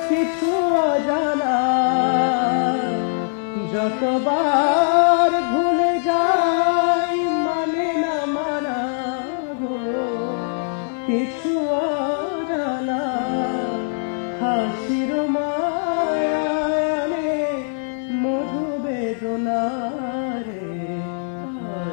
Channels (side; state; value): right; silent; digital silence